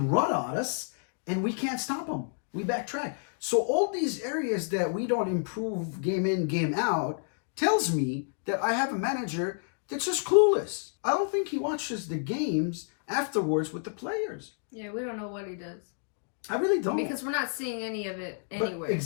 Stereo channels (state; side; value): silent; right; digital silence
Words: run on us, and we can't stop them. We backtrack. So all these areas that we don't improve game in, game out, tells me that I have a manager that's just clueless. I don't think he watches the games afterwards with the players. Yeah, we don't know what he does. I really don't. Because we're not seeing any of it anywhere.